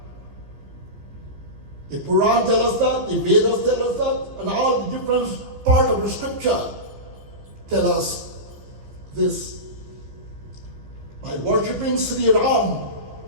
The Quran tells us that, the Vedas tell us that, and all the different part of the scripture tell us this. By worshipping Sri Ram,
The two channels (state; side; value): late; left; 15 ms